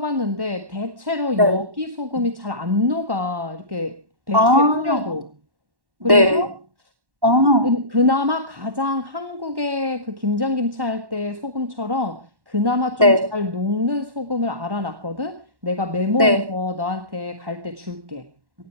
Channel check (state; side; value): late; left; 1.1 ms